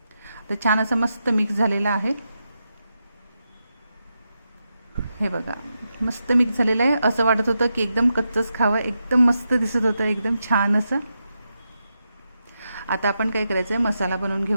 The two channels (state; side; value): inverted; both; correlation -0.86